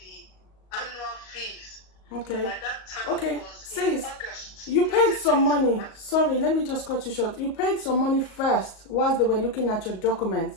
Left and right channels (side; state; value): right; late; 38 ms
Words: annual fees. Okay. By that time it was in August. You paid some money. Sorry, let me just cut you short. You paid some money first whilst they were looking at your